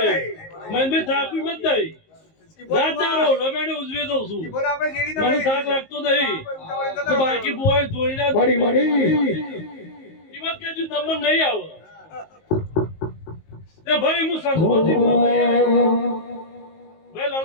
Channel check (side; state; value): right; late; 19 ms